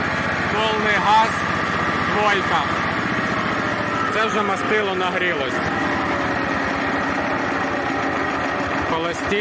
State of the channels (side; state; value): both; identical; correlation 1.00